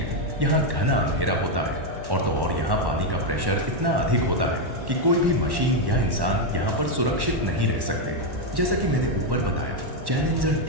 यहाँ घना अंधेरा होता है और तो और यहाँ पानी का प्रेशर इतना अधिक होता है कि कोई भी मशीन या इंसान यहाँ पर सुरक्षित नहीं रह सकते। जैसा कि मैंने ऊपर बताया, चैलेंजर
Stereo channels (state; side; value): late; left; 1.1 ms